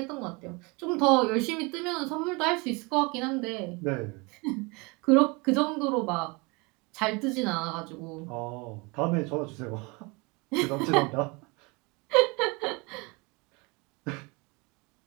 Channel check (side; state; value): left; quieter; 27.9 dB